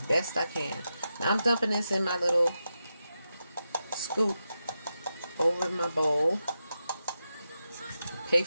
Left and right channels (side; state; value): both; inverted; correlation -0.89